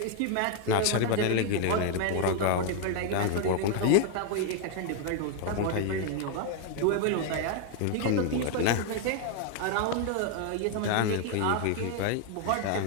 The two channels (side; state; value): both; different; correlation 0.01